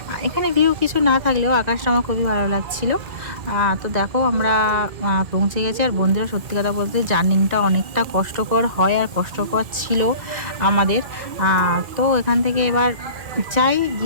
এখানে ভিউ কিছু না থাকলেও আকাশটা আমার খুবই ভালো লাগছিল। তো দেখো আমরা পৌঁছে গেছি। আর বন্ধুরা সত্যি কথা বলতে জার্নিংটা অনেকটা কষ্টকর হয়, আর কষ্টকর ছিল আমাদের। তো এখান থেকে এবার চাই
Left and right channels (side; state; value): left; late; 1.9 ms